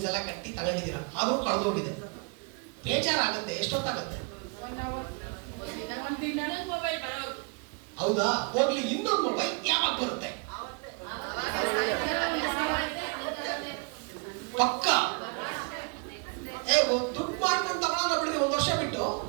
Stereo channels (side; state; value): left; quieter; 34.5 dB